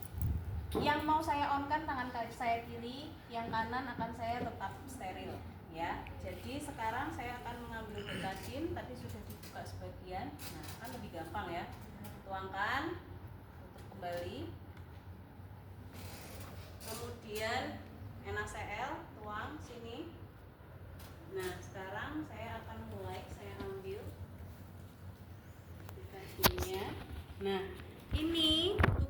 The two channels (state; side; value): identical; both; correlation 1.00